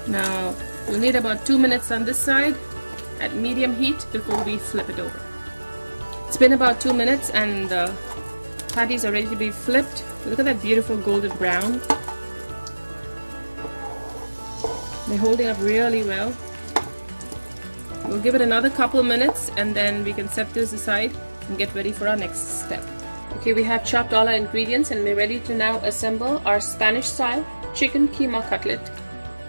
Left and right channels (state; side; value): inverted; both; correlation -1.00